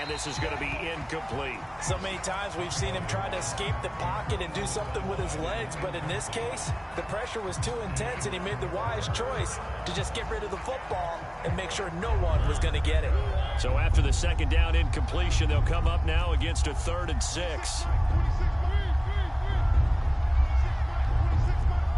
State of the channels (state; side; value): identical; both; correlation 1.00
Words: this is going to be incomplete. So many times we've seen him try to escape the pocket and do something with his legs, but in this case, the pressure was too intense and he made the wise choice to just get rid of the football and make sure no one was going to get it. So after the 2nd down incompletion, they'll come up now against a 3rd and 6.